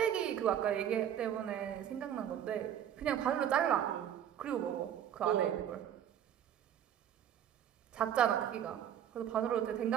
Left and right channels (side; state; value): left; quieter; 10.0 dB